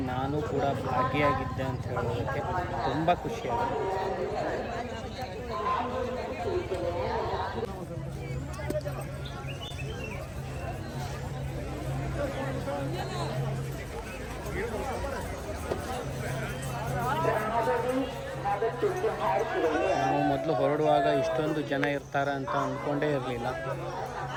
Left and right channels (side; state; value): both; identical; correlation 1.00